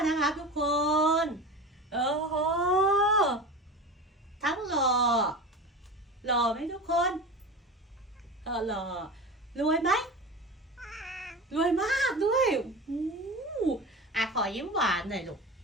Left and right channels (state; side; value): normal; both; correlation 0.30